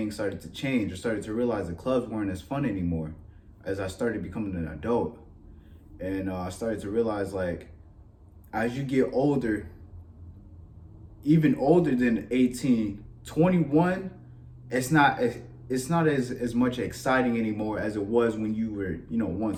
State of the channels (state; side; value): identical; both; correlation 1.00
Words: started to change. I started to realize the clubs weren't as fun anymore as I started becoming an adult. And I started to realize, like, as you get older, even older than 18, 21, it's not as much exciting anymore as it was when you were,